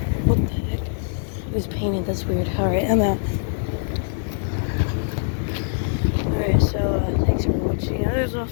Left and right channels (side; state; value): right; silent; digital silence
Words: the heck? It was painted. That's weird. Alright, I'm out. Alright, so thanks for watching. There's